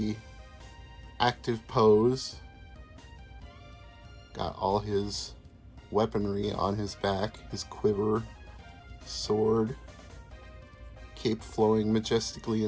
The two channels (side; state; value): both; identical; correlation 1.00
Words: active pose. Got all his weaponry on his back, his quiver, sword, cape flowing majestically